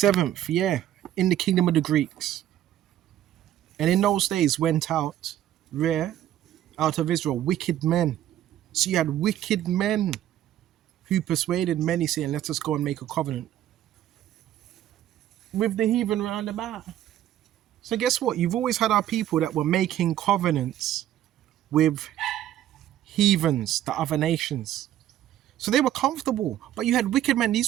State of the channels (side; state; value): left; quieter; 12.1 dB